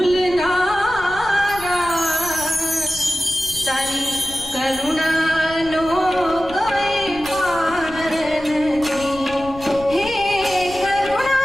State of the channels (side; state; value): left; noise; rumble, 16 dB below the sound